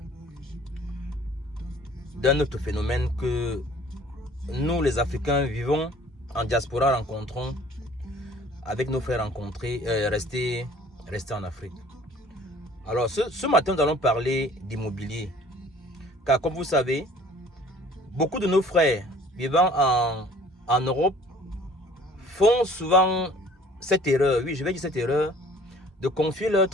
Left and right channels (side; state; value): both; normal; correlation 0.52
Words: d'un autre phénomène que nous, les Africains, vivons en diaspora, rencontrons avec nos frères restés en Afrique. Alors, ce matin, nous allons parler d'immobilier. Car comme vous savez, beaucoup de nos frères vivant en Europe font souvent cette erreur, oui, je vais dire cette erreur, de confier leurs